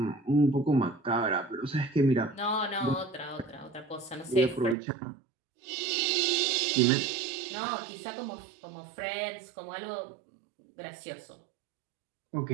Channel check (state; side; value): drops out; left; at 4.8 s